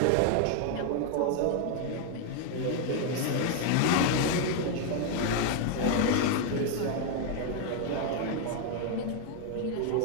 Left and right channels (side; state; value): both; different; correlation 0.00